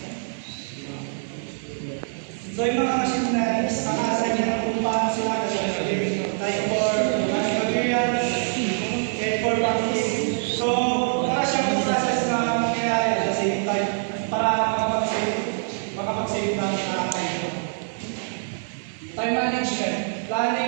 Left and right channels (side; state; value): left; silent; digital silence